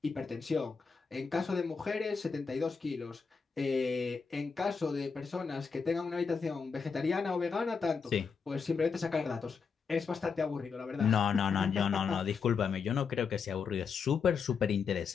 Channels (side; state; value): right; quieter; 5.6 dB